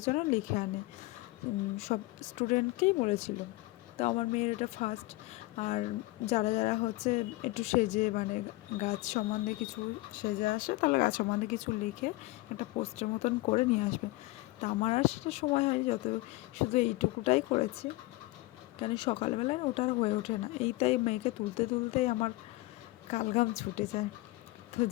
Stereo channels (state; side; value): quieter; right; 20.7 dB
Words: যেন লিখে আনে। সব স্টুডেন্টকেই বলেছিল। তো আমার মেয়ের এটা ফার্স্ট। আর যারা যারা হচ্ছে একটু সেজে, মানে গাছ সম্বন্ধে কিছু সেজে আসে, তাহলে গাছ সম্বন্ধে কিছু লিখে একটা পোস্টার মতন করে নিয়ে আসবে। তা আমার আর সেটা সময় হয়নি, শুধু এইটুকুটাই করেছি, কেন সকালবেলায় ওটা আর হয়ে ওঠে না। এইটাই মেয়েকে তুলতে তুলতেই আমার কালঘাম ছুটে যায়। তো